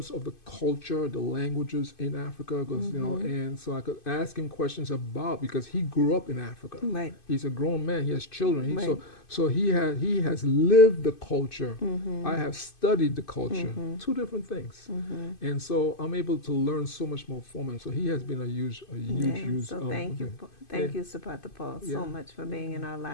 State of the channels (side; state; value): right; late; 2.5 ms